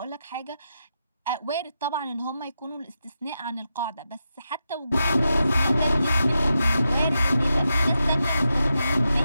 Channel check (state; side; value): inverted; both; correlation -0.87